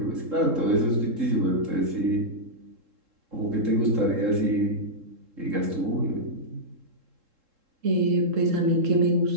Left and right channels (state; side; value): late; left; 3.7 ms